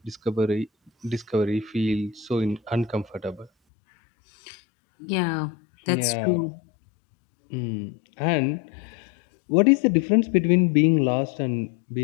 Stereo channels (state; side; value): drops out; right; at 3.5 s